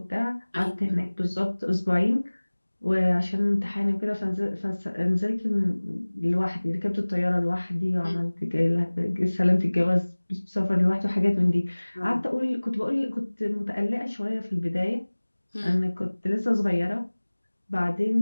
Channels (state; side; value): inverted; both; correlation -1.00